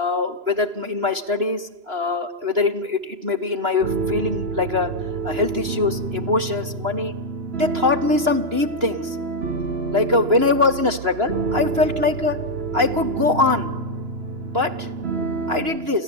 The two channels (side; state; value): left; late; 2.9 ms